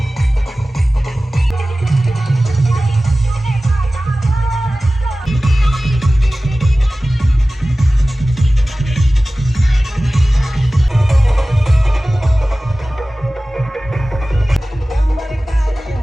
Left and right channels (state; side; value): normal; both; correlation 0.97